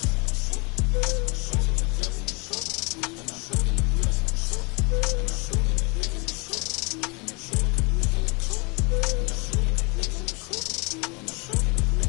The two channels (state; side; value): quieter; right; 30.0 dB